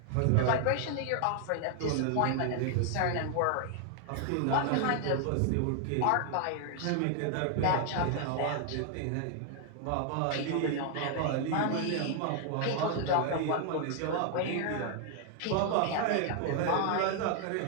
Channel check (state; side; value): different; both; correlation 0.00